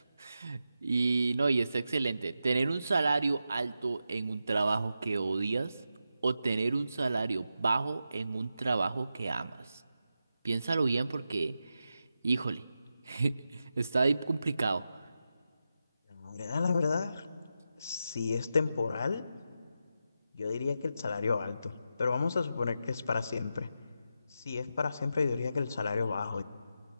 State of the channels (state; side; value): inverted; both; correlation -0.89